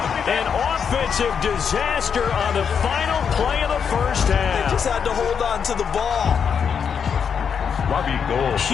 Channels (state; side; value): quieter; right; 7.0 dB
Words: An offensive disaster on the final play of the first half. They just had to hold on to the ball. Robbie Gould.